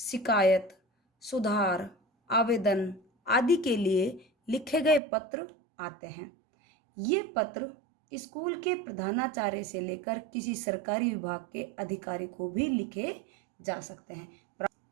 सुधार, आवेदन आदि के लिए लिखे गए पत्र आते हैं। ये पत्र स्कूल के प्रधानाचार्य से लेकर किसी सरकारी विभाग के अधिकारी को भी लिखे जा सकते हैं।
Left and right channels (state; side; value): drops out; left; at 5.0 s